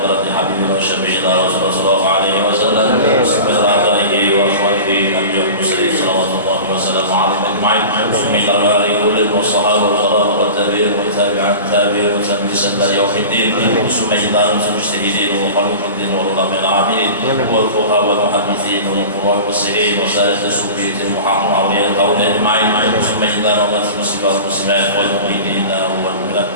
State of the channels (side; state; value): both; inverted; correlation -0.34